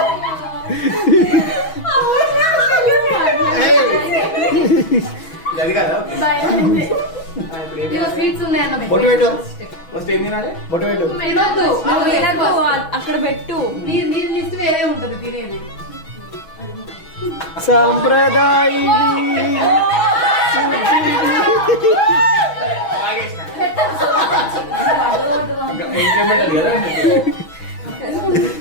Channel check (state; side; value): late; right; 6.2 ms